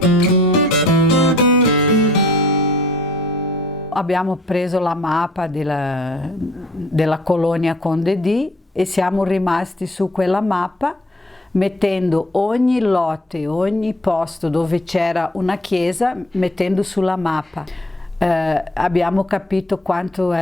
Abbiamo preso la mappa della colonia Conde D e siamo rimasti su quella mappa, mettendo ogni lotte, ogni posto dove c'era una chiesa, mettendo sulla mappa. Abbiamo capito quanto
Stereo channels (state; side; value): normal; both; correlation 0.56